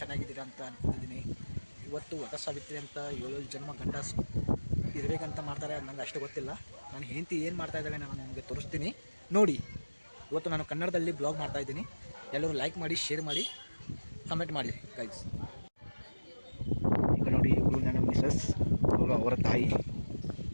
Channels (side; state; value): both; inverted; correlation -1.00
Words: ಅಂತ ಅನ್ಕೊಂಡಿದ್ದೀನಿ. ಇವತ್ತು ವಟ ಸಾವಿತ್ರಿ ಅಂತ 7 ಜನ್ಮ ಗಂಡ ಇರಬೇಕಂತ ಮಾಡ್ತಾರೆ. ಅದು ನಂಗೆ ಅಷ್ಟು ಗೊತ್ತಿಲ್ಲ. ನಾನು ಹೆಂಡತಿ ಏನು ಮಾಡ್ತಾ ಇದ್ದಾಳೆ ನಾನು ನಿಮಗೆ ತೋರಿಸ್ತೀನಿ ನೋಡಿ. ಇವತ್ತು ನಾನು ಕನ್ನಡದಲ್ಲಿ ಬ್ಲಾಗ್ ಮಾಡ್ತಾ ಇದ್ದೀನಿ. ಎಲ್ಲರೂ ಲೈಕ್ ಮಾಡಿ, ಶೇರ್ ಮಾಡಿ, ಕಮೆಂಟ್ ಮಾಡಿ ಗೈಸ್. ಈಗ ನೋಡಿ, ಇವಳು ನನ್ನ ಮಿಸಸ್, ಅವಳು ಅವರ ತಾಯಿ.